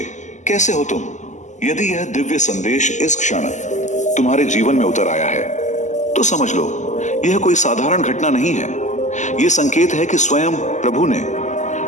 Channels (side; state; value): right; late; 0.34 ms